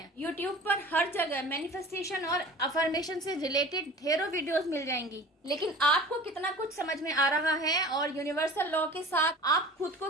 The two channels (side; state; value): both; normal; correlation 0.41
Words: यूट्यूब पर हर जगह मैनिफेस्टेशन और अफर्मेशन से रिलेटेड ढेरों वीडियोस मिल जाएंगी, लेकिन आपको कितना कुछ समझ में आ रहा है और यूनिवर्सल लॉ के साथ आप खुद को